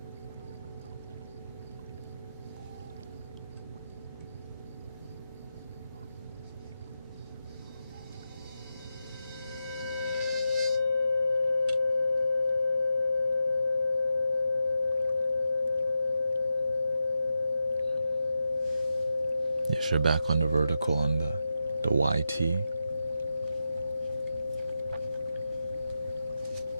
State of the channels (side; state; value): both; inverted; correlation -0.89